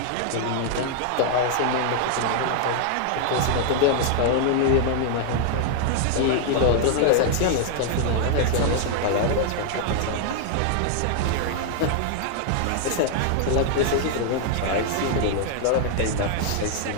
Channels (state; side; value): different; both; correlation 0.00